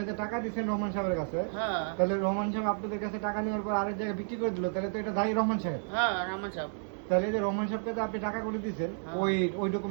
যে টাকা দিছেন রহমান সাহেবের কাছে, হ্যাঁ, তাহলে রহমান সাহেব আপনাদের কাছে টাকা নেওয়ার পর আরেক জায়গায় বিক্রি করে দিল, তাহলে তো এটা দায়ী রহমান সাহেব। হ্যাঁ, রহমান সাহেব। তাহলে যে রহমান সাহেবকে তো আপনি টাকা করে দিয়েছেন, ওই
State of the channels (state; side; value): silent; left; digital silence